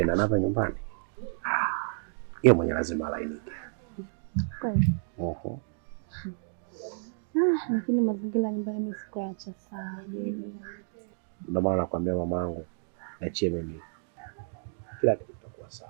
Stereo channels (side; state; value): left; silent; digital silence